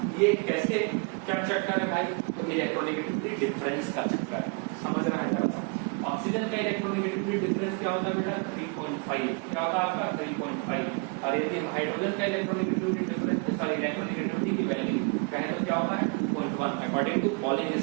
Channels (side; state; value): left; quieter; 33.7 dB